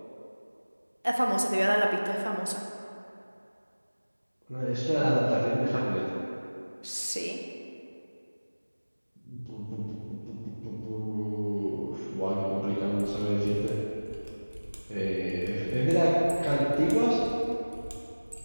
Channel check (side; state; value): both; inverted; correlation -1.00